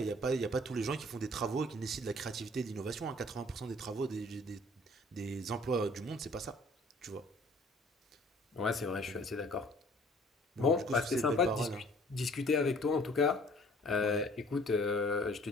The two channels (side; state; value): both; normal; correlation 0.54